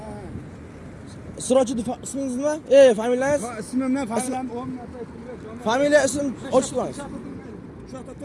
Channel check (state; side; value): identical; both; correlation 1.00